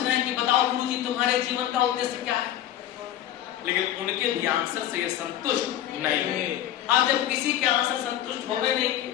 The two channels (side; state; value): right; quieter; 12.1 dB